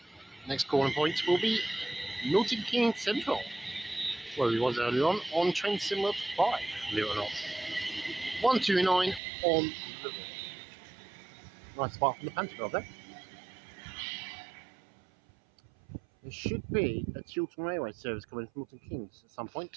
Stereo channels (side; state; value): left; drops out; at 9.2 s